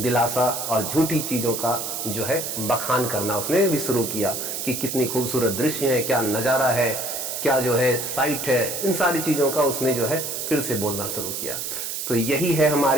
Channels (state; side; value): noise; right; hiss, 4 dB below the sound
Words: और झूठी चीजों का जो है बखान करना उसने भी शुरू किया कि कितनी खूबसूरत दृश्य है, क्या नजारा है, क्या जो है साइट है, इन सारी चीजों का उसने जो है फिर से बोलना शुरू किया। तो यही है